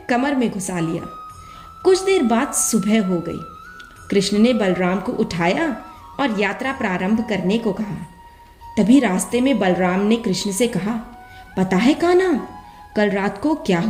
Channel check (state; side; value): identical; both; correlation 1.00